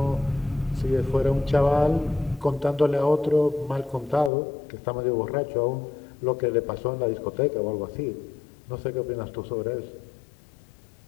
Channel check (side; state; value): right; drops out; at 4.3 s